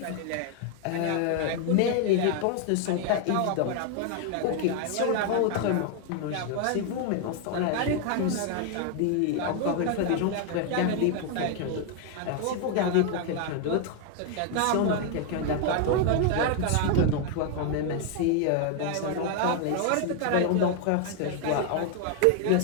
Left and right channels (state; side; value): different; both; correlation 0.00